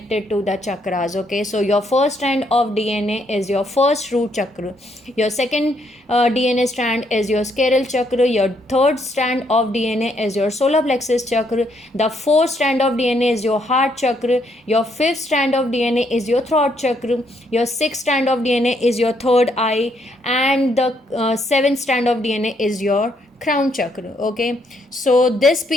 to the chakras. Okay, so your first strand of DNA is your first root chakra, your second DNA strand is your scleral chakra, your third strand of DNA is your solar plexus chakra, the fourth strand of DNA is your heart chakra, your fifth strand of DNA is your throat chakra, your sixth strand of DNA is your third eye, and the seventh strand of DNA is your crown chakra. Okay, so this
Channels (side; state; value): both; normal; correlation 0.73